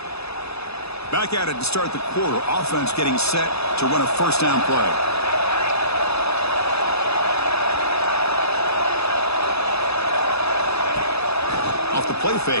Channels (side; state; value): right; late; 0.79 ms